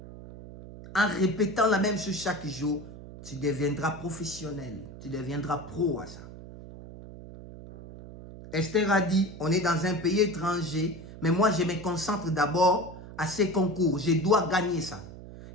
En répétant la même chose chaque jour, tu deviendras professionnel, tu deviendras pro à ça. Esther a dit, on est dans un pays étranger, mais moi je me concentre d'abord à ces concours, je dois gagner ça.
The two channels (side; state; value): right; noise; hum, 14 dB below the sound